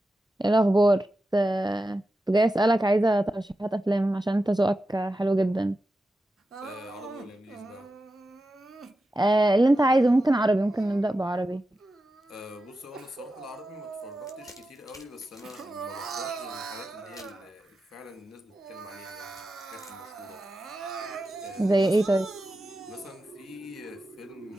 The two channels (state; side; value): normal; both; correlation 0.91